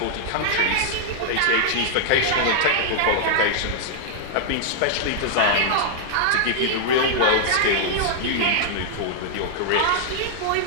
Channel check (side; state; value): both; different; correlation -0.01